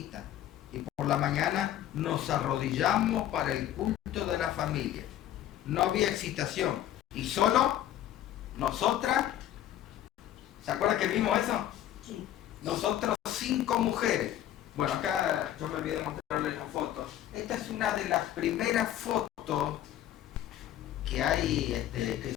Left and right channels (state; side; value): quieter; right; 12.3 dB